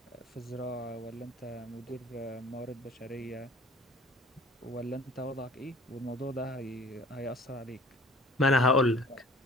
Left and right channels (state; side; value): normal; both; correlation 0.48